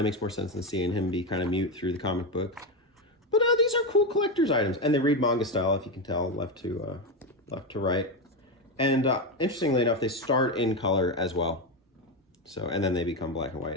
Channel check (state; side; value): normal; both; correlation 0.12